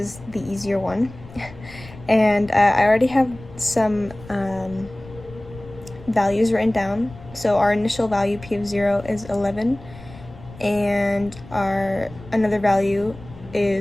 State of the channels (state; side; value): noise; left; rumble, 18 dB below the sound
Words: the easier one. And I already have some values written down. So our initial value, P of 0, is 11, and our another value